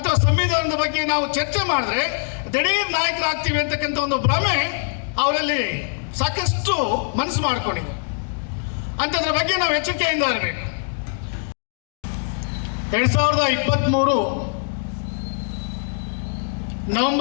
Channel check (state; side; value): silent; right; digital silence